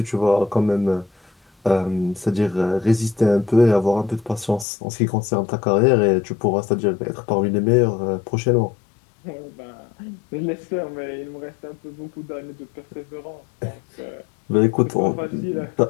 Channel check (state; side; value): drops out; right; at 4.7 s